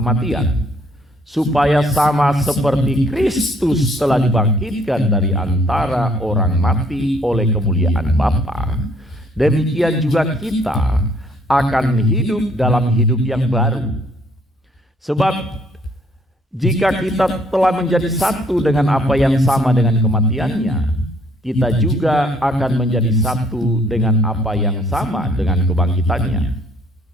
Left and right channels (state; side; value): normal; both; correlation 0.64